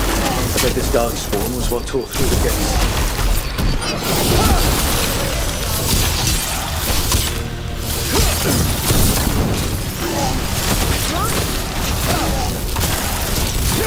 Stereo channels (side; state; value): both; identical; correlation 1.00